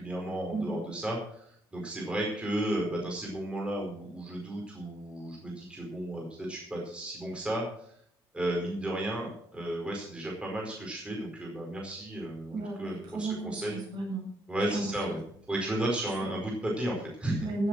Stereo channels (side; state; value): both; normal; correlation 0.74